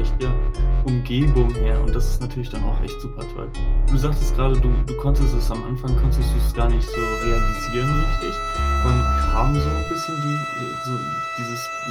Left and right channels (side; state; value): both; identical; correlation 1.00